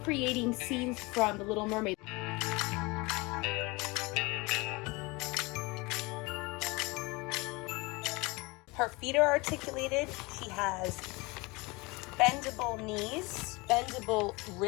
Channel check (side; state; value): right; quieter; 25.0 dB